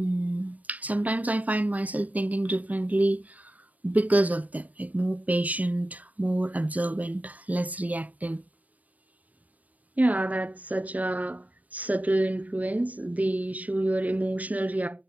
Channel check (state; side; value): late; left; 0.074 ms